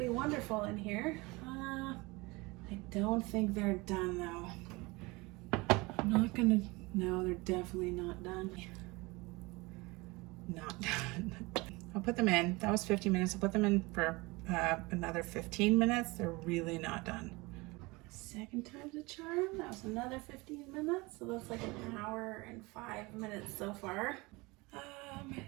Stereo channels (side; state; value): left; quieter; 24.1 dB